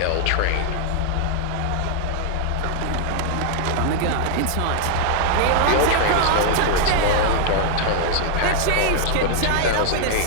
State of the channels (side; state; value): both; different; correlation -0.01